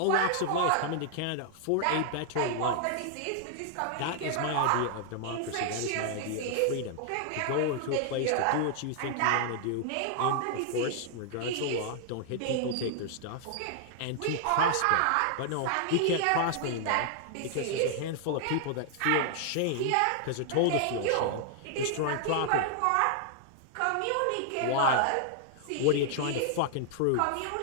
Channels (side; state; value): both; different; correlation -0.01